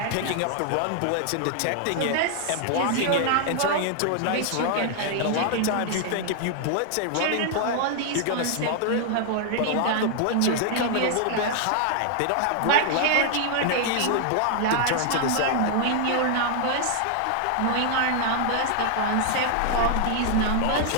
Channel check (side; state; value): both; different; correlation 0.00